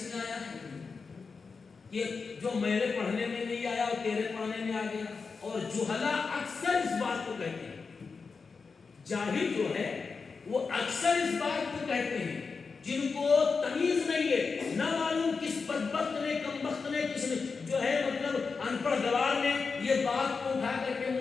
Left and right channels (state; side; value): quieter; right; 4.9 dB